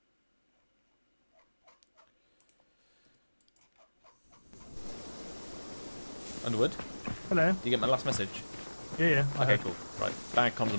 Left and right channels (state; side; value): inverted; both; correlation -1.00